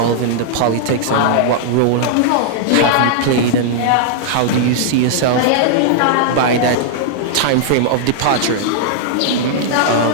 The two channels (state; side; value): different; both; correlation -0.01